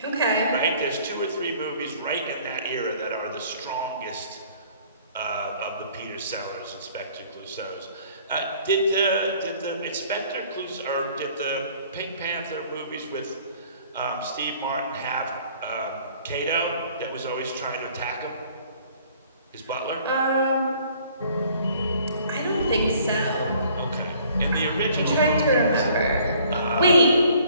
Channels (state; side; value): inverted; both; correlation -0.56